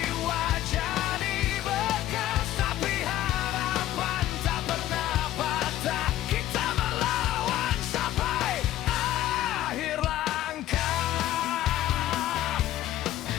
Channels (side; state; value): right; quieter; 13.7 dB